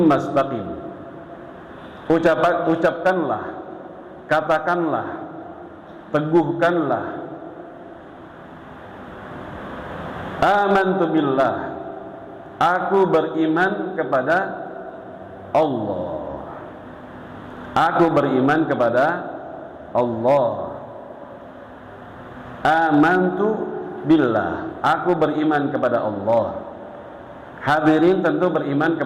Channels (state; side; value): identical; both; correlation 1.00